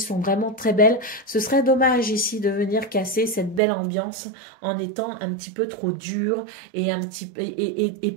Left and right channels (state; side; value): drops out; left; at 3.6 s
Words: vraiment très belles. Ce serait dommage ici de venir casser cette belle ambiance en étant un petit peu trop dur et